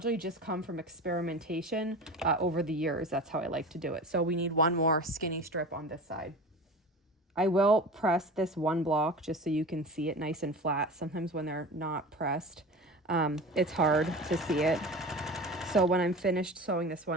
just come from experimentation over the years. That's how I like to do it. So we need one more skinny strip on this side. I will press this one block just so you can see it nice and flat. Sometimes when they're not pressed, it's hard to see it. So when I'm finished sewing this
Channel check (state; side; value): normal; both; correlation 0.34